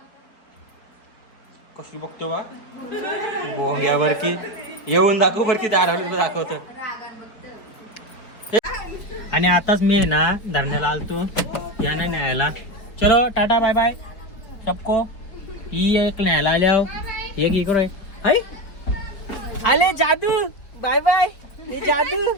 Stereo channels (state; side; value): late; right; 4.3 ms